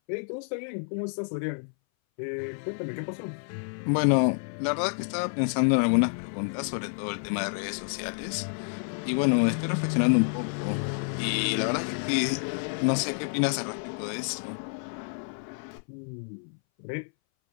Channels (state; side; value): silent; right; 59 dB below the other